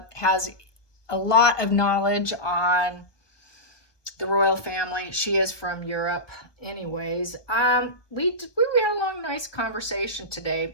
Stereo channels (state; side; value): late; right; 1.2 ms